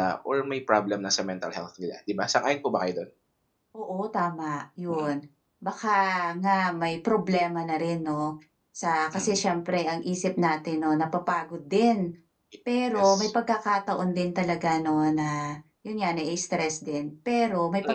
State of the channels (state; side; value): identical; both; correlation 1.00